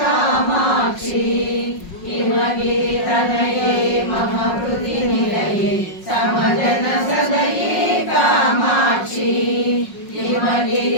हिमगिरितनये मम हृदि निलये समजन सदये कामाक्षी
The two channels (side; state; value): right; late; 5.5 ms